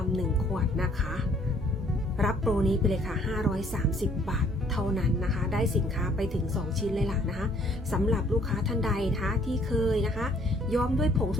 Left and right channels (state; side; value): normal; both; correlation 0.62